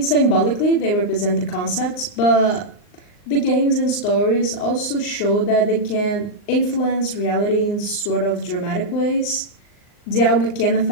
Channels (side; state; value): right; late; 39 ms